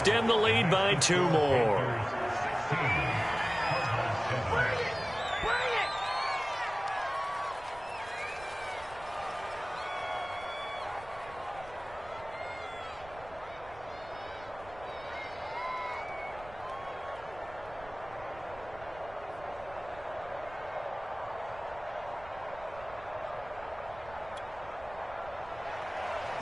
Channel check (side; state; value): right; noise; rumble, 19 dB below the sound